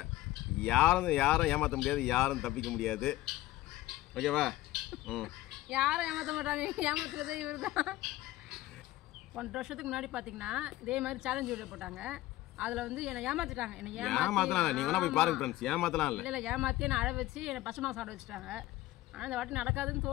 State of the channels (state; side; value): quieter; right; 16.6 dB